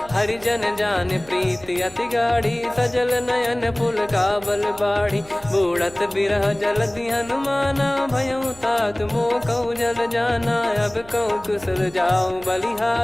हरिजन जान प्रीति अति गाढ़ी, सजल नयन पुल काबल बाढ़ी। बूढ़त बिरह जलधि हनुमाना, भयउ तात मोह कहु जल जाना। अब कहु कुशल जाऊं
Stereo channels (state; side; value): noise; right; hum, 22 dB below the sound